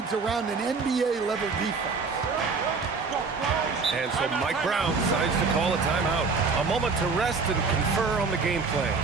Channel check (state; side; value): quieter; left; 4.6 dB